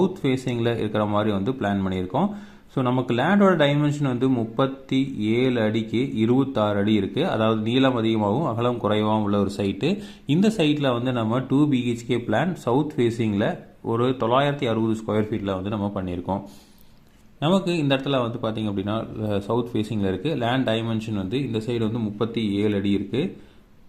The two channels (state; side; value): identical; both; correlation 1.00